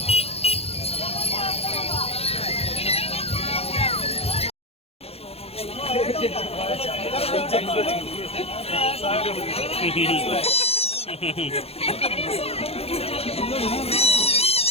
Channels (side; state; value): right; late; 0.29 ms